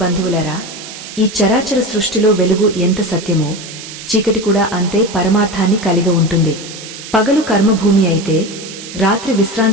బంధువులరా, ఈ చరాచర సృష్టిలో వెలుగు ఎంత సత్యమో చీకటి కూడా అంతే పరమార్థాన్ని కలిగి ఉంటుంది. పగలు కర్మభూమి అయితే రాత్రి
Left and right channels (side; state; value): right; noise; hiss, 13 dB below the sound